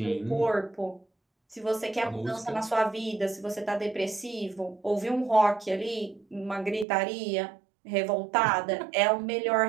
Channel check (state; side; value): drops out; left; at 6.9 s